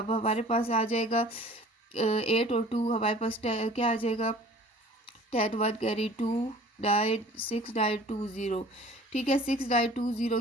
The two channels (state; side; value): normal; both; correlation 0.48